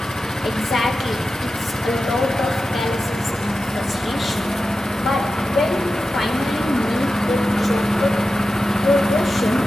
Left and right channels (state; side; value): normal; both; correlation 0.93